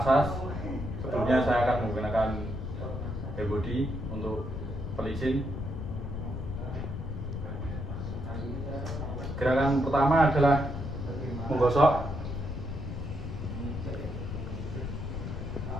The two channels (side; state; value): left; noise; rumble, 5 dB below the sound